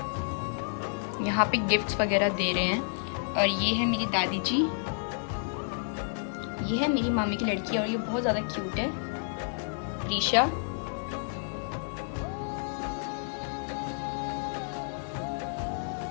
यहाँ पे गिफ्ट्स वगैरह दे रहे हैं। और ये है मेरी दादी जी, ये है मेरी मामी की लड़की और ये बहुत ज़्यादा क्यूट है, प्रीशा।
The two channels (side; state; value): right; silent; digital silence